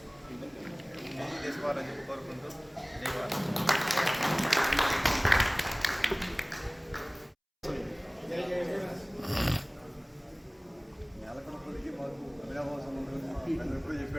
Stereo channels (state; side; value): identical; both; correlation 1.00